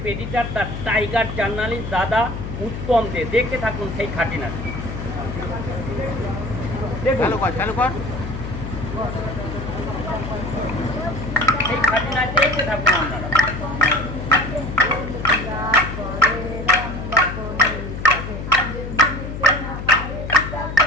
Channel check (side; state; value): left; noise; hum, 7 dB below the sound